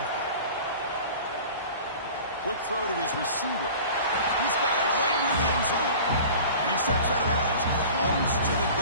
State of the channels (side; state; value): both; inverted; correlation -0.41